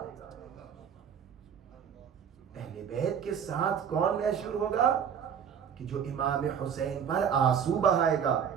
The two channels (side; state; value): left; quieter; 7.9 dB